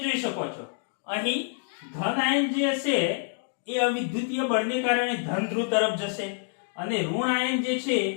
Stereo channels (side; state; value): right; silent; digital silence